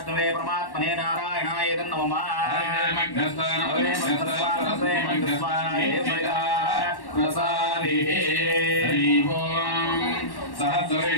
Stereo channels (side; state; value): right; late; 1.1 ms